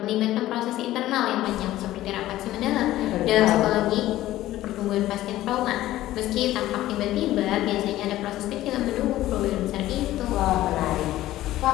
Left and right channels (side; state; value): right; quieter; 15.0 dB